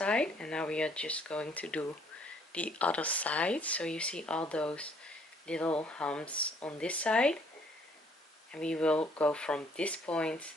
and now we are just going to do the other side. So you see all those little humps on this side, and we will go from this point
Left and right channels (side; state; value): both; normal; correlation 0.63